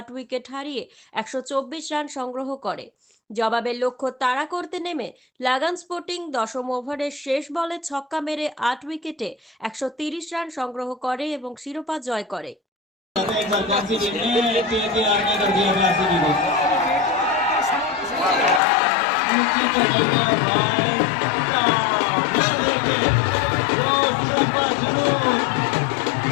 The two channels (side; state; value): right; drops out; at 18.6 s